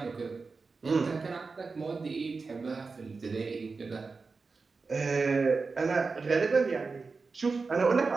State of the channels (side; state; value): left; quieter; 4.3 dB